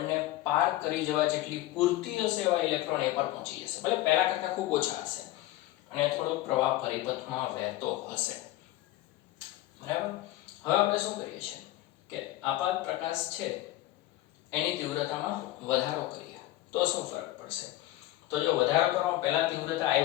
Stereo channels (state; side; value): quieter; right; 16.0 dB